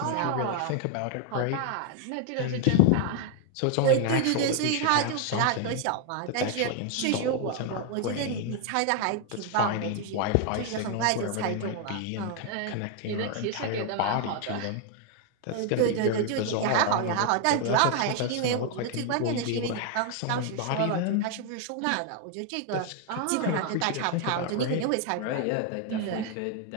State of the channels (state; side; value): different; both; correlation 0.00